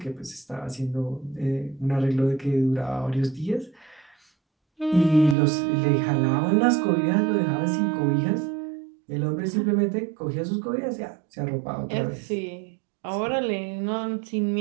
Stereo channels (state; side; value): drops out; left; at 5.4 s